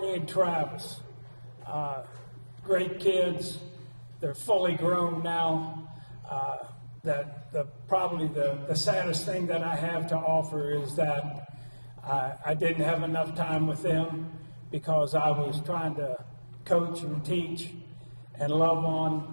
and Travis, great kids. They're fully grown now. Probably the saddest thing that I have to offer is that I didn't have enough time with them because I was trying to coach and teach and love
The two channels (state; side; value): inverted; both; correlation -1.00